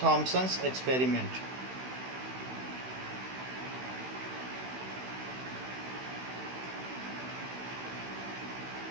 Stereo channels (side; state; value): left; late; 16 ms